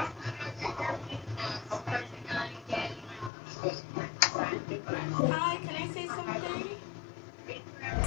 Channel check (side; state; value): right; drops out; at 3.3 s